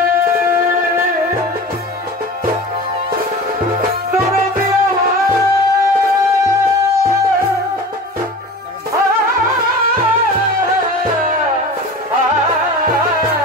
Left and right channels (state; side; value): normal; both; correlation 0.35